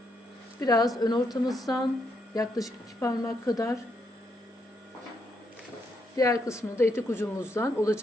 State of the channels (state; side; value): normal; both; correlation 0.78